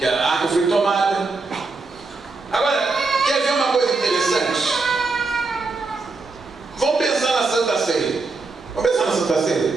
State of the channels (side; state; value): left; quieter; 3.9 dB